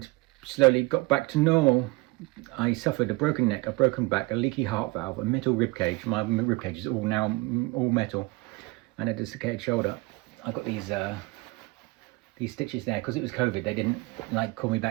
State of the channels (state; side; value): quieter; left; 23.9 dB